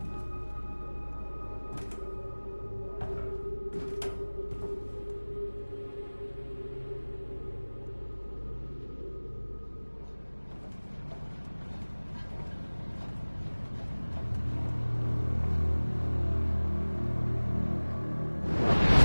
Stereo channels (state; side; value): inverted; both; correlation -1.00